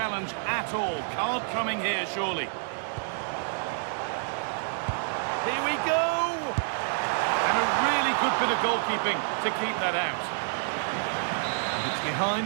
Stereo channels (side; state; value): left; silent; digital silence